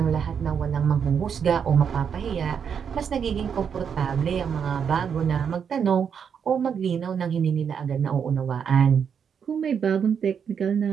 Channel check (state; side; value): quieter; left; 7.3 dB